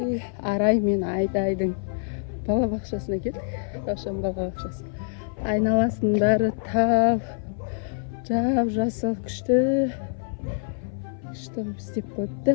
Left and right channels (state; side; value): silent; right; 56 dB below the other